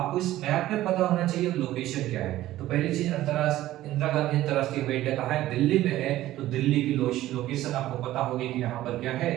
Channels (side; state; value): left; quieter; 14.9 dB